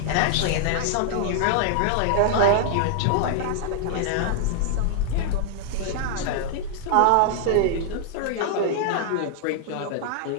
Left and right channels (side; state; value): both; different; correlation -0.01